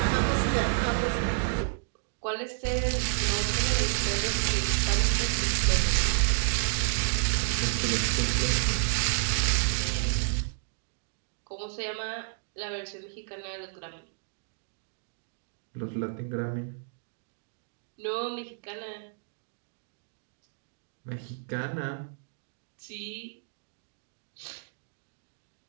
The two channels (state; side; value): silent; left; digital silence